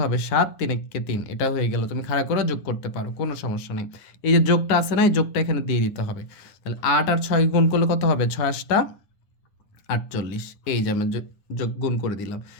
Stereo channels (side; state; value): right; late; 9.8 ms